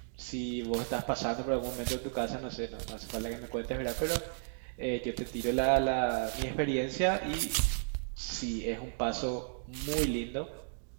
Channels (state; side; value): silent; left; digital silence